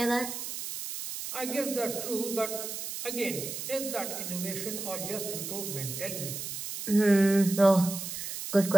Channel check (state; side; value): noise; right; hiss, 6 dB below the sound